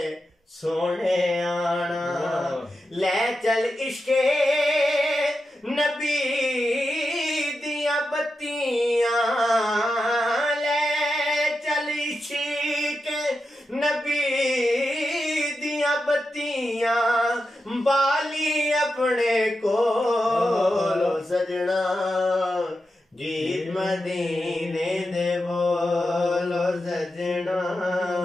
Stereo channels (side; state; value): both; normal; correlation 0.89